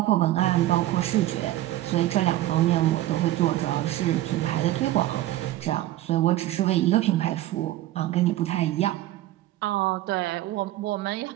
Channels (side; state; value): left; quieter; 14.9 dB